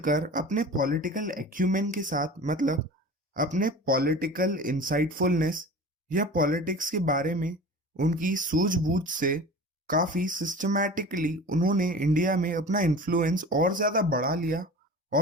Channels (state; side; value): normal; both; correlation 0.37